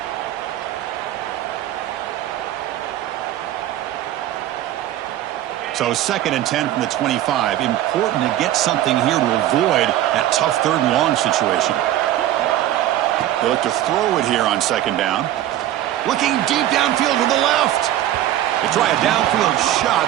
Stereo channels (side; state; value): left; quieter; 13.1 dB